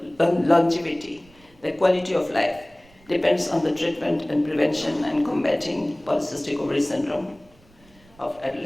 longevity, the quality of life depends on the treatment and prevention and combating polycystic ovary syndrome of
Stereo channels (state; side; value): noise; right; rumble, 28 dB below the sound